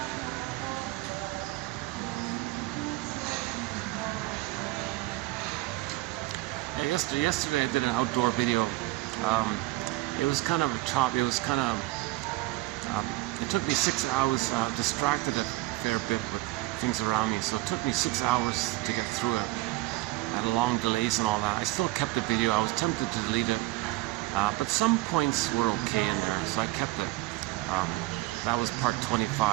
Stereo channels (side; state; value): left; quieter; 19.0 dB